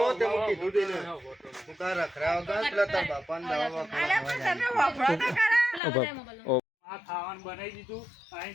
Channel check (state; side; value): drops out; right; at 5.8 s